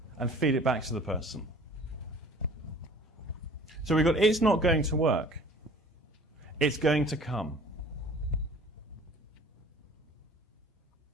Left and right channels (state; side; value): normal; both; correlation 0.48